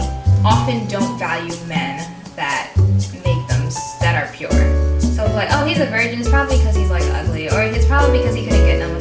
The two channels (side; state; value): both; identical; correlation 1.00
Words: often don't value men that are pure. So like, oh, he's a virgin, it's probably because he's like ugly, or it's probably because he couldn't get none when